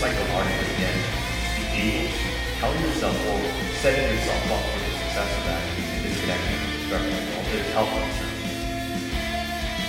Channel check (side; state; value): both; identical; correlation 1.00